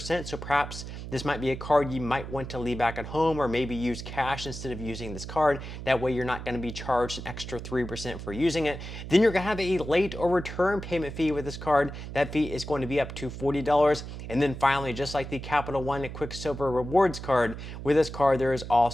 So perhaps this might be a card you might want to leave back at home, or maybe use cash instead of using this card. That way you're not going to be charged an extra 3% for using it. Then you're going to have a late or return payment fee with this card. That fee is going to be up to $40. And then finally, just like the Capital One Quicksilver Rewards card, with this card there is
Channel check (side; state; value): right; noise; hum, 9 dB below the sound